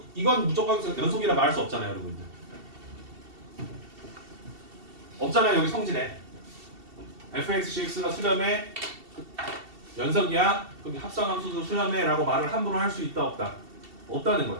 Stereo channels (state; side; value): late; left; 2.7 ms